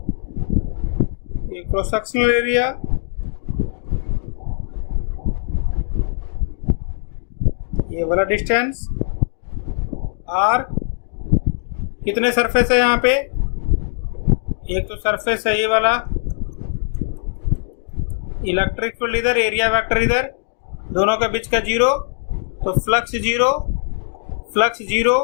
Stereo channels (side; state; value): right; silent; digital silence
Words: क्रॉस सेक्शनल एरिया ये वाला डिस्टेंस आर। कितने सरफेस है यहाँ पे? एक तो सरफेस है ये वाला, इलेक्ट्रिक फील्ड इधर, एरिया वेक्टर इधर, दोनों के बीच का जीरो, तो फ्लक्स जीरो,